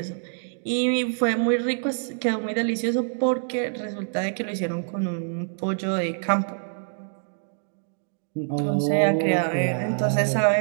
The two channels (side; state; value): left; silent; digital silence